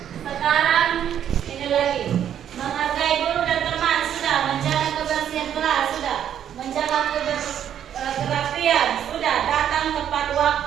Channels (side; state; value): left; quieter; 9.8 dB